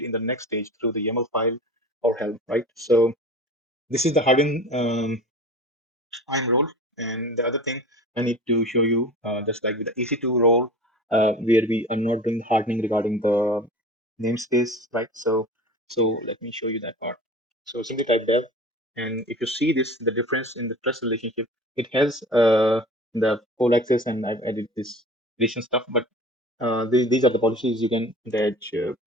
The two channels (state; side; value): normal; both; correlation 0.39